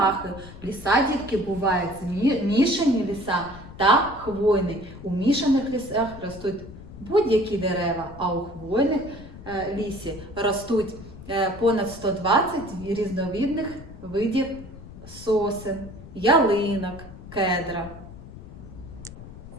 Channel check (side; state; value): left; noise; rumble, 15 dB below the sound